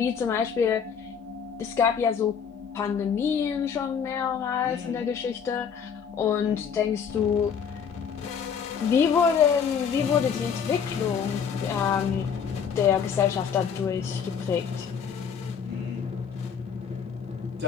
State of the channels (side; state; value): right; quieter; 7.1 dB